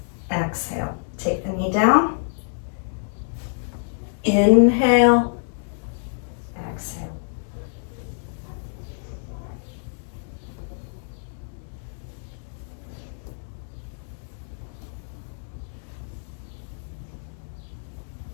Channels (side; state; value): right; silent; digital silence